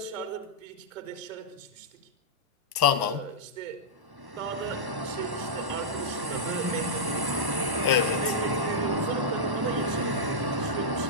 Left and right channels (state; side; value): late; left; 1.0 ms